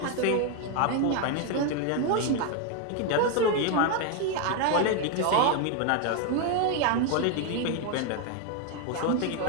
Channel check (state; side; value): different; both; correlation 0.01